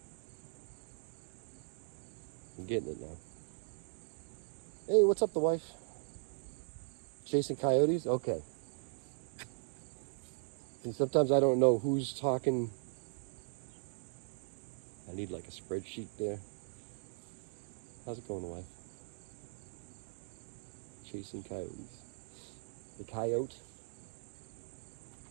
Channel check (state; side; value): silent; left; 52 dB below the other